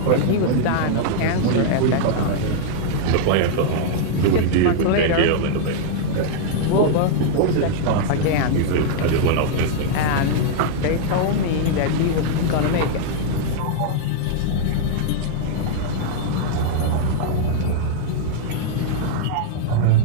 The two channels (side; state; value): both; different; correlation -0.01